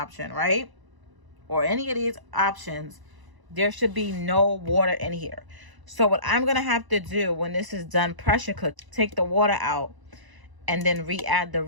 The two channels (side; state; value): left; late; 1.0 ms